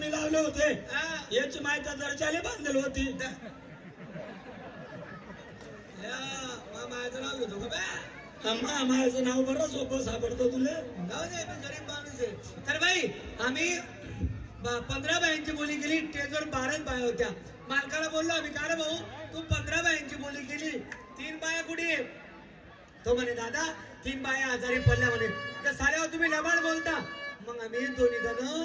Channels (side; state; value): both; identical; correlation 1.00